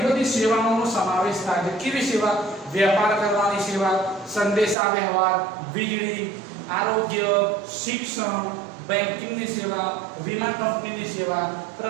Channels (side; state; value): left; drops out; at 4.8 s